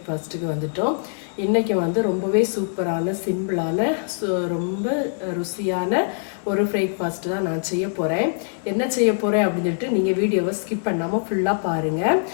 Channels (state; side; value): silent; right; digital silence